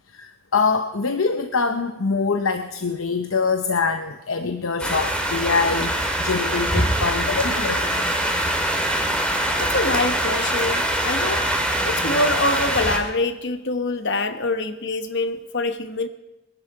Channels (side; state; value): both; normal; correlation 0.07